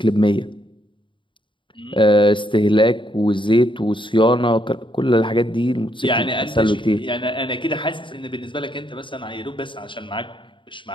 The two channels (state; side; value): late; right; 0.24 ms